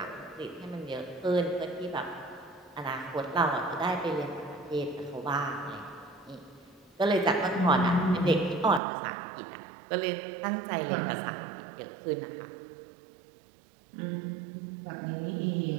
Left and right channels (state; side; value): drops out; left; at 8.8 s